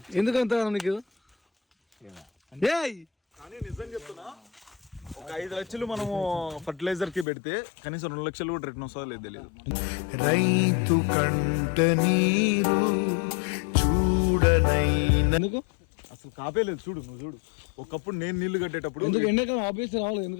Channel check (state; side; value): drops out; right; at 7.2 s